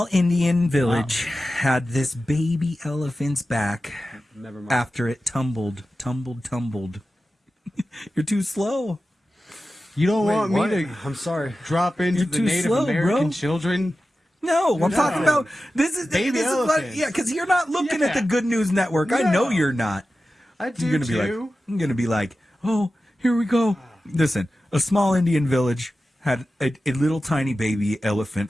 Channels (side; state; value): both; normal; correlation 0.93